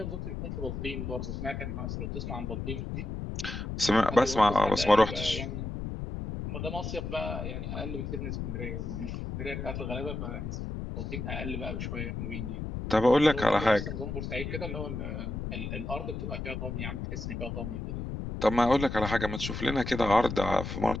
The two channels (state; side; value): noise; left; rumble, 5 dB below the sound